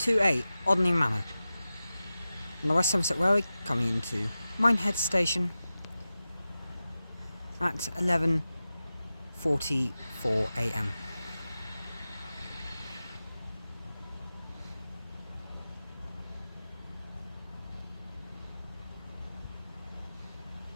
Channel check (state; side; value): inverted; both; correlation -0.94